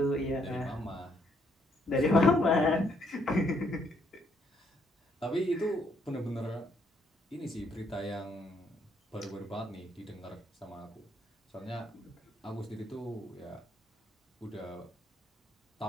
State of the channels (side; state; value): both; normal; correlation 0.71